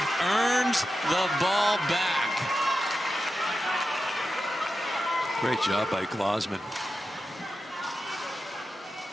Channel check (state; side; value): normal; both; correlation 0.90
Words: earns the ball back. Great job by Glozman.